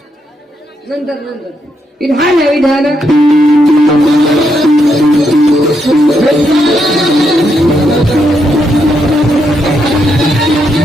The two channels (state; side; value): normal; both; correlation 0.79